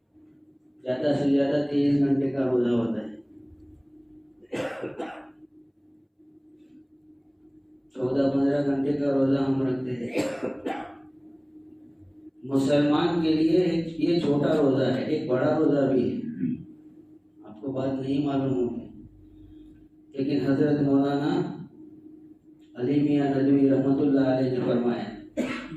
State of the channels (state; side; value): identical; both; correlation 1.00